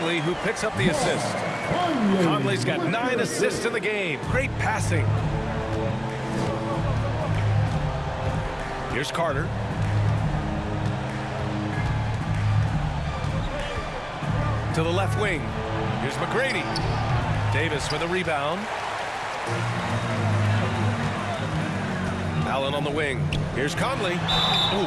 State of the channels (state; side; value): identical; both; correlation 1.00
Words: who picks up the assist. Conley's got 9 assists in the game. Great passing. Here's Carter. To the left wing. Here's McGrady. Davis with a rebound. Allen on the wing. Here's Conley. Ooh,